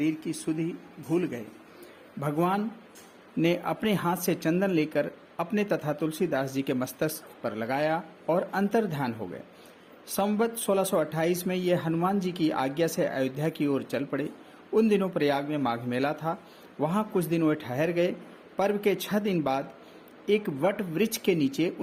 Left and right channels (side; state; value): both; identical; correlation 1.00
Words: की सुधि भूल गए। भगवान ने अपने हाथ से चंदन लेकर अपने तथा तुलसीदास जी के मस्तक पर लगाया और अंतर्ध्यान हो गए। संवत 1628 में ये हनुमान जी की आज्ञा से अयोध्या की ओर चल पड़े। उन दिनों प्रयाग में माघ मेला था। वहां कुछ दिन वे ठहर गए। पर्व के 6 दिन बाद एक वट वृक्ष के नीचे